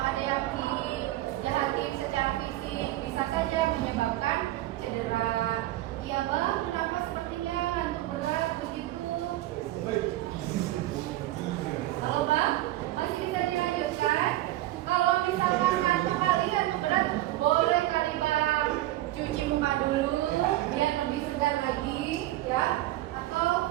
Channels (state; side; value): quieter; left; 15.8 dB